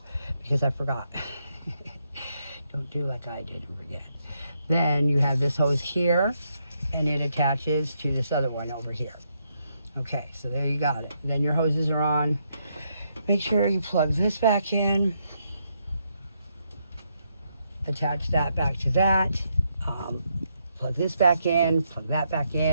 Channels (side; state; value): both; inverted; correlation -0.78